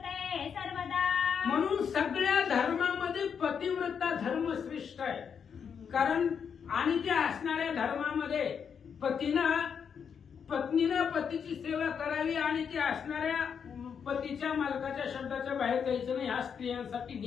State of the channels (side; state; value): right; quieter; 7.0 dB